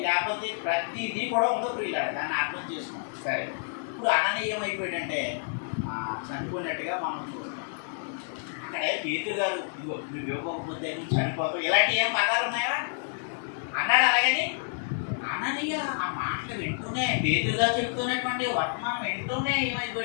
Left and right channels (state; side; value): silent; right; digital silence